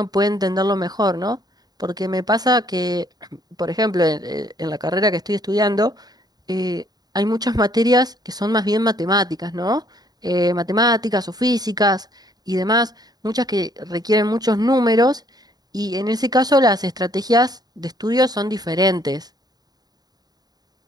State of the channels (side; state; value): left; late; 0.19 ms